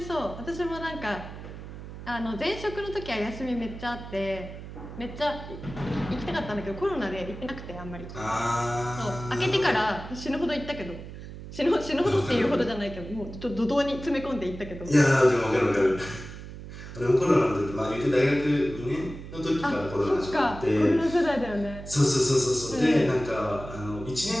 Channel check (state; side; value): noise; right; hum, 12 dB below the sound